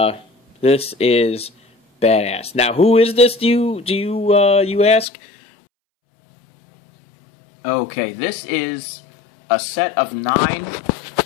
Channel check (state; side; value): drops out; right; at 5.1 s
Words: this is badass. Now, who is this, do you ask? Okay, this is a set of 9